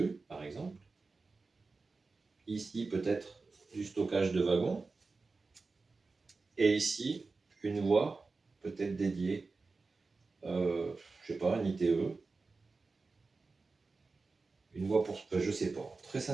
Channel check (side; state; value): left; quieter; 4.0 dB